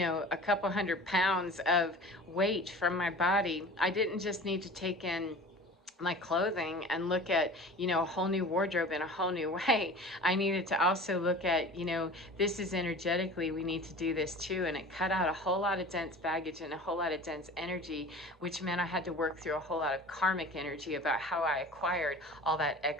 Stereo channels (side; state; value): both; normal; correlation 0.39